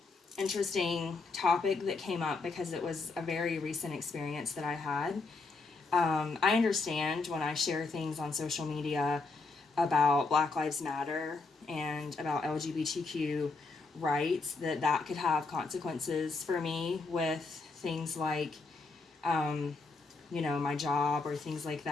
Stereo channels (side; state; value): right; quieter; 3.9 dB